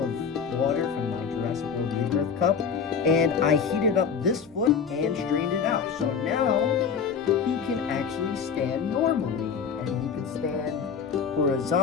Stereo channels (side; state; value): right; quieter; 6.5 dB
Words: water from my Jurassic World Rebirth cup, and I heated up this foot and strained it out. So now he can actually stand normally, and he can stand